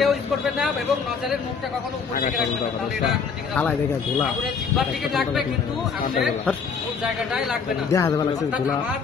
ইউজ করবেন না এবং নজরের মুখটা কখনো উপর দিকে রাখবেন না, তাহলে এটা আগুনের জিহ্বার দিকে লাগবে কিন্তু আগুনের মূল জায়গাটাই লাগবে না। আমার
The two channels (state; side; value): quieter; right; 5.8 dB